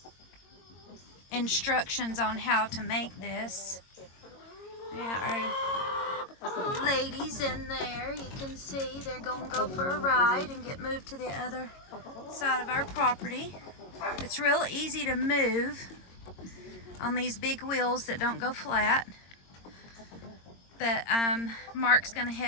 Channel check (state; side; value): late; right; 22 ms